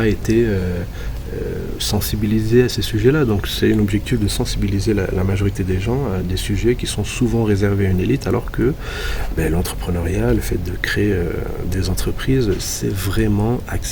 été sensibilisé à ces sujets-là. Donc c'est un objectif de sensibiliser la majorité des gens à des sujets qui sont souvent réservés à une élite, alors que l'entrepreneuriat, le fait de créer des entreprises, c'est vraiment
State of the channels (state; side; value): identical; both; correlation 1.00